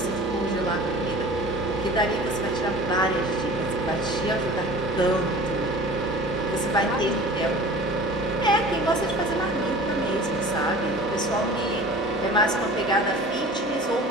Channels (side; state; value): both; normal; correlation 0.42